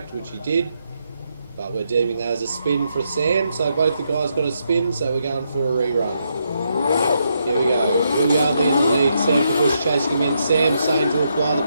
which he did, but we're deeming that as a spin for Sam. So both the guys got a spin, so we're going for a rerun. Here we go. Will Yardley in the lead. Sam Tabush chasing him in. Sam saying to apply the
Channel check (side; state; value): both; inverted; correlation -0.79